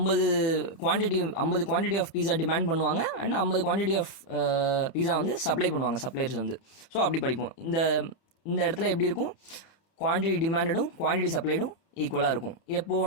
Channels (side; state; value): right; late; 30 ms